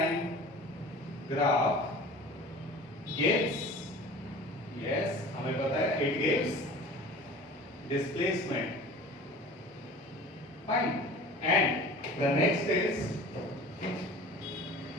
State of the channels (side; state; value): both; normal; correlation 0.41